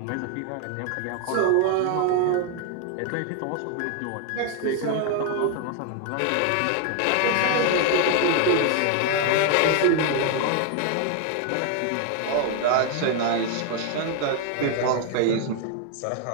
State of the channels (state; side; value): different; both; correlation 0.00